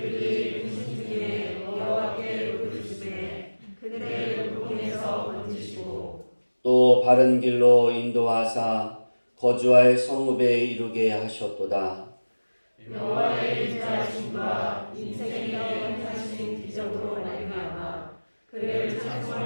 근심중에 여호와께 부르짖으매 그들을 고통에서 건지시고 또 바른 길로 인도하사 거주할 성읍에 이르게 하셨도다. 여호와의 인자하심과 인생에게 행하신 기적으로 말미암아 그를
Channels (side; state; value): both; inverted; correlation -1.00